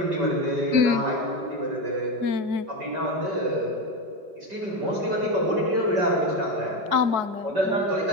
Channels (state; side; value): late; left; 4.7 ms